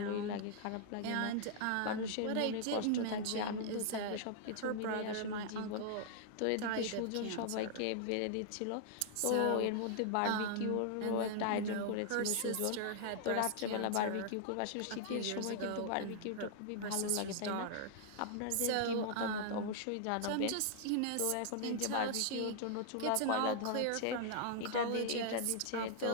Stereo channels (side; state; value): both; different; correlation -0.01